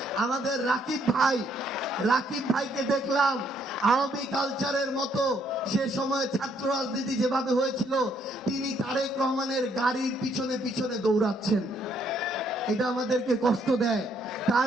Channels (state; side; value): normal; both; correlation 0.70